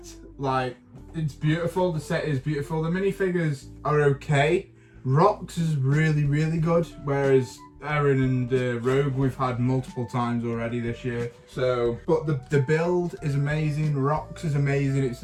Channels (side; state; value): both; identical; correlation 1.00